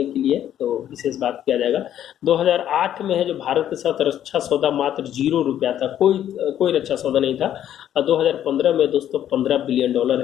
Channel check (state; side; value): quieter; right; 10.9 dB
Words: के लिए तो विशेष बात किया जाएगा। 2008 में है जो भारत के साथ रक्षा सौदा मात्र $0 था, कोई रक्षा सौदा नहीं था। और 2015 में दोस्तों $15 बिलियन